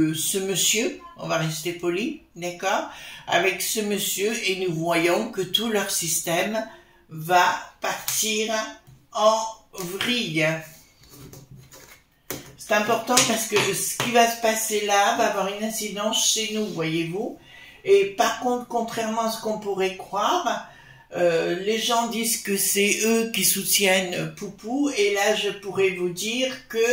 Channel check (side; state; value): both; identical; correlation 1.00